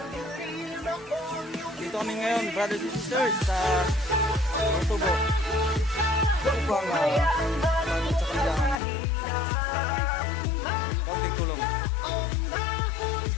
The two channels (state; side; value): drops out; right; at 8.8 s